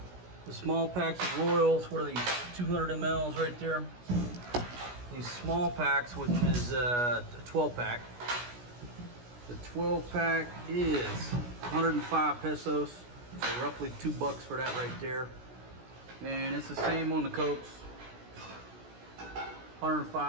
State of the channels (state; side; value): late; left; 16 ms